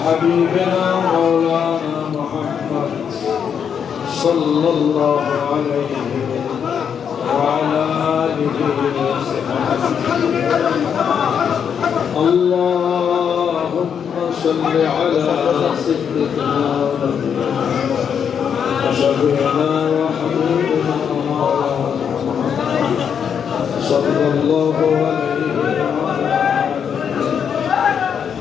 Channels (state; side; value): quieter; right; 7.6 dB